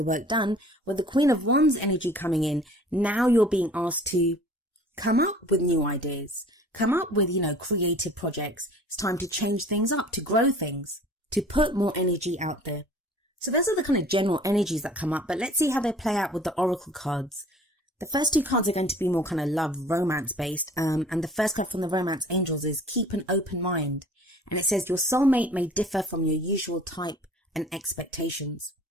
work done, with the Queen of Wands energy coming in, now you're being asked to come up with new ideas, come up with, creative projects. It's time to change things up, to grow things, to put more energy out there. So those are the kind of general energies that come up, but let's see how they play out with the oracle cards. The first two cards are going to be more kind of love, romance based. And the first card from the romance angels is keep an open mind. And it says your soulmate may differ from your usual type and expectations.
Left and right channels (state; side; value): normal; both; correlation 0.48